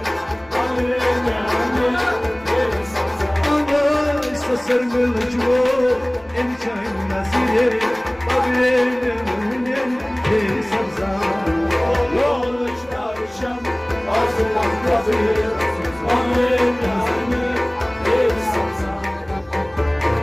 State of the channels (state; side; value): noise; left; hum, 29 dB below the sound